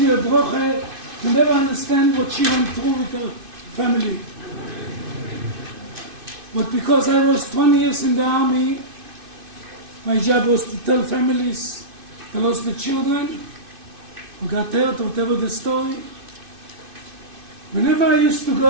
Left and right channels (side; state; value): left; late; 2.5 ms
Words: a bracha to never understand what she went through with her family. But because I was 20 years in the army, my job was to tell families they lost the children, who got hurt, whatever the story. Whenever I used to